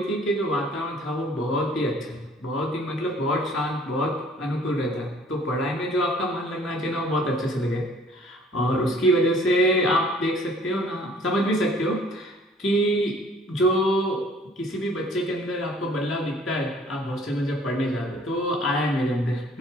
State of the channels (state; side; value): normal; both; correlation 0.56